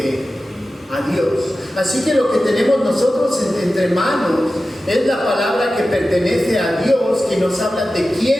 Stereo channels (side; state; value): both; normal; correlation 0.94